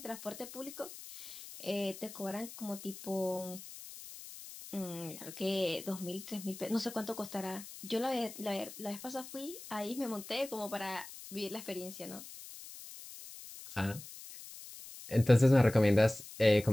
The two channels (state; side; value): noise; left; hiss, 14 dB below the sound